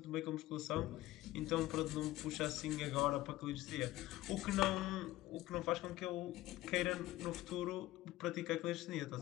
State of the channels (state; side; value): quieter; right; 16.6 dB